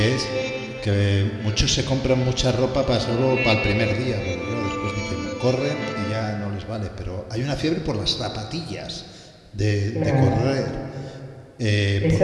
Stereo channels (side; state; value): both; identical; correlation 1.00